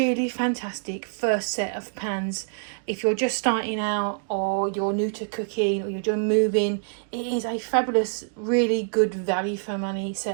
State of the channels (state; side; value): silent; left; digital silence